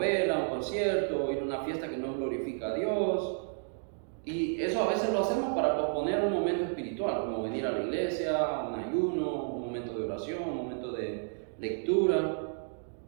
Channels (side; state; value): left; silent; digital silence